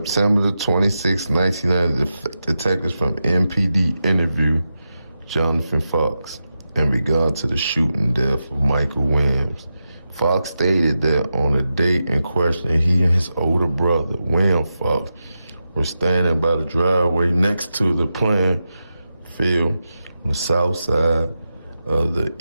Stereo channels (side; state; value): both; inverted; correlation -0.89